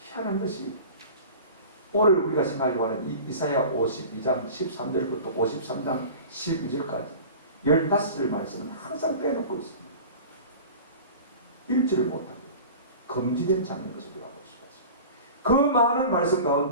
희한한 것이 오늘 우리가 생각하려고 하는 이사야 52장 13절부터 53장 12절까지 15절 말씀은 항상 빼놓고 있습니다. 읽지를 못하고 금지된 장면인 것을 우리가 볼 수가 있습니다. 그 많은 말씀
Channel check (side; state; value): both; inverted; correlation -0.38